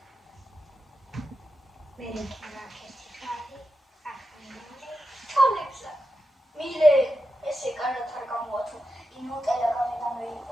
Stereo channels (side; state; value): both; normal; correlation 0.89